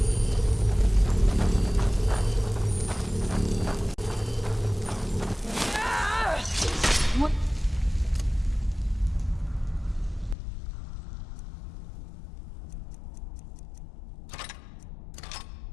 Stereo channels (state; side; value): drops out; right; at 10.4 s